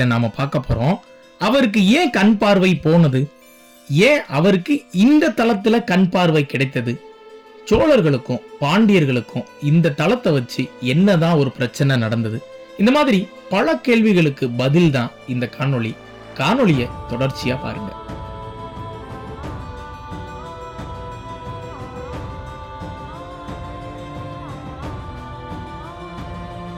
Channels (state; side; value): identical; both; correlation 1.00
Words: நாம பார்க்க போறோம். அவருக்கு ஏன் கண் பார்வை போனது, ஏன் அவருக்கு இந்த தலத்துல கண் பார்வை கிடைத்தது, சோழர்களுக்கும் பாண்டியர்களுக்கும் இந்த தலத்தை வச்சு என்னதான் ஒரு பிரச்சனை நடந்தது, இந்த மாதிரி பல கேள்விகளுக்கு பதில் தான் இந்த காணொளியை தொடர்ச்சியா பாருங்க.